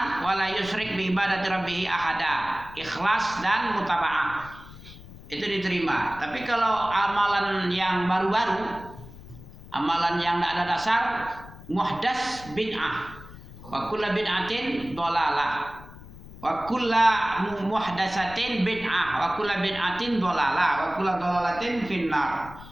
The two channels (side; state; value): left; noise; rumble, 17 dB below the sound